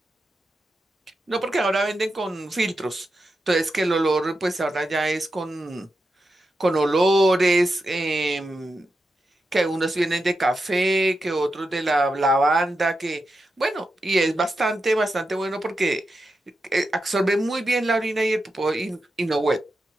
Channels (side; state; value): both; normal; correlation 0.88